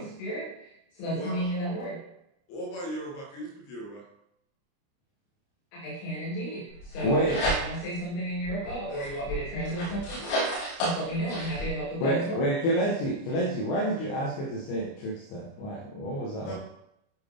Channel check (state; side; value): late; right; 29 ms